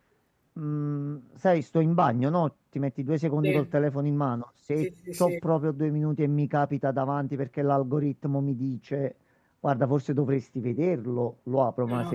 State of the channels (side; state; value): both; identical; correlation 1.00